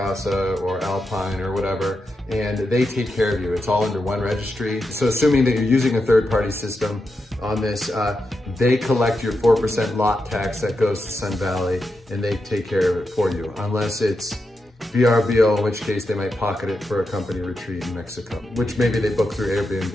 or Alpine or whatever, and they take care of you. It's all under one registry. So assuming that you're using a third-party system on this, they collect your 4% lot tax that goes to Sun Valley, and they take care of it for you, unless it's VRBO, in which case they might pocket it for a company retreat in Mexico, which maybe they book through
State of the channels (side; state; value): both; normal; correlation 0.87